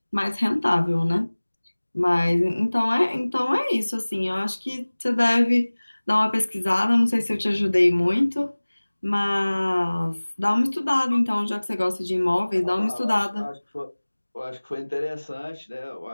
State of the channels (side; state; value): both; inverted; correlation -1.00